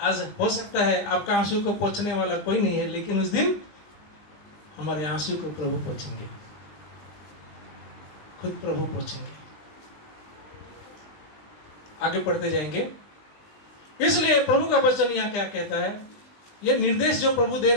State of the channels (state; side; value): late; right; 20 ms